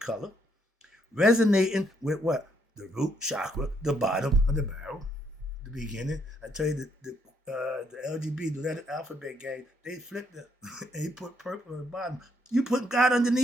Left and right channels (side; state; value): both; normal; correlation 0.73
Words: resonating with what? the root chakra, the bottom of the barrel, the beginning. I tell you the LGB, the letter alphabet gang, they flipped it. And he put purple on the bottom. You put God